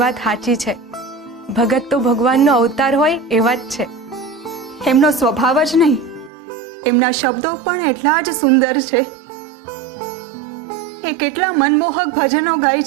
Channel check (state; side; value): drops out; left; at 6.3 s